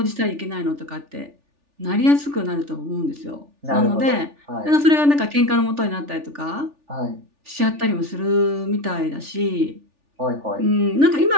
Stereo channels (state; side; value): late; left; 3.4 ms